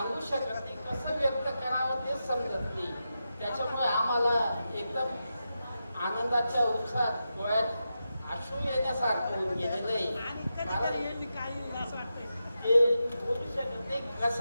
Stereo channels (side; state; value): both; inverted; correlation -0.89